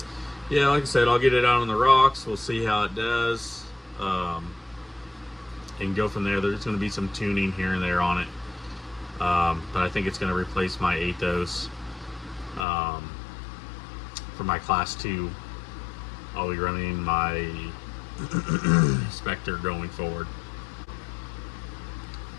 yeah, like I said, I'll get it out on the rocks. We'll see how it does, and go from there. There's going to be some tuning here and there on it. But I think it's going to replace my Athos for my class 2. I'll be running my Spectre going forward.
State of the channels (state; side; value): drops out; right; at 12.7 s